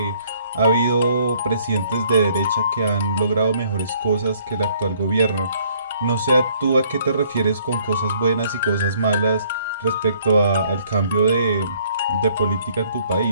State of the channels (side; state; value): both; inverted; correlation -0.63